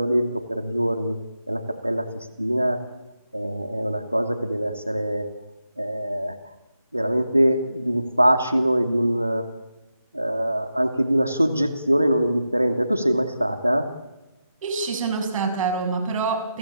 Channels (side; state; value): both; inverted; correlation -0.88